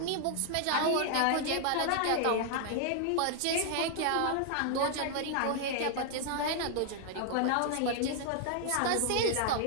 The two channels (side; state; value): both; different; correlation 0.00